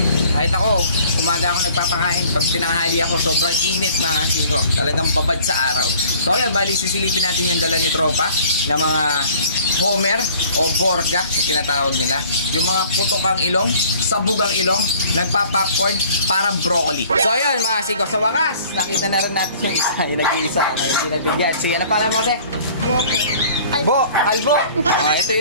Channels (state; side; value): inverted; both; correlation -0.51